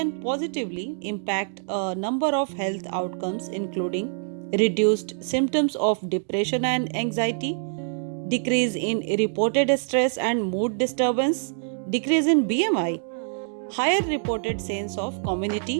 positively impact a number of health outcomes, including reduced symptoms of depression and anxiety, decrease in reported stress and mood disturbance, decrease in BMI, higher reported sense of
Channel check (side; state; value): left; silent; digital silence